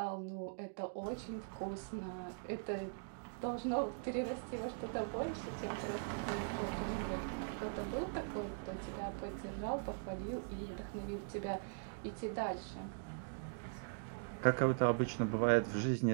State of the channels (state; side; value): silent; left; digital silence